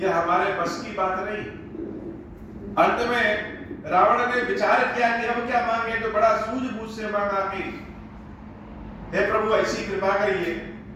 हमारे बस की बात नहीं। अंत में रावण ने विचार किया कि अब क्या मांगे, तो बड़ा सूझबूझ से मांगा कि हे प्रभु, ऐसी कृपा करिए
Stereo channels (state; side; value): identical; both; correlation 1.00